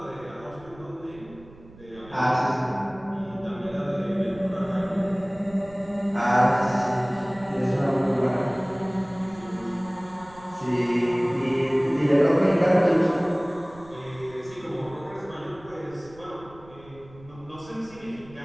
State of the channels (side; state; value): right; noise; rumble, 22 dB below the sound